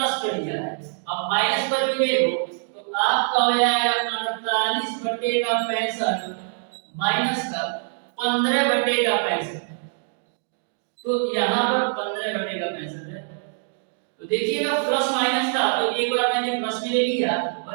कर दिया है। अब माइनस पर भी ले लो तो आपका हो जाएगा 48/65 माइनस का 15/65, तो यहाँ पर 15/65 है। तो देखिएगा प्लस माइनस था तो एक बार मैंने प्लस भी ले लिया और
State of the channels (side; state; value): left; silent; digital silence